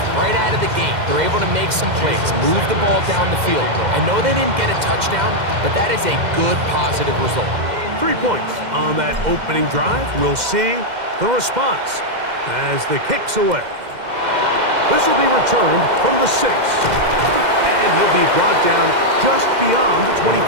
right out of the gate. They're able to make some plays, move the ball down the field. I know they didn't get a touchdown, but that is a good, positive result. 3 points on that opening drive. We'll see the response as the kick's away. This will be returned from the 6. And he'll be brought down just beyond the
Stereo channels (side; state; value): left; late; 2.1 ms